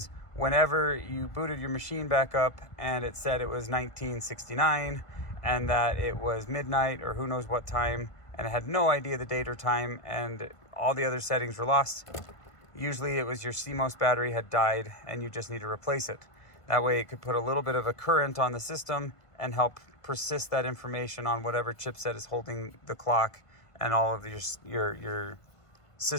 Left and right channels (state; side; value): late; right; 1.5 ms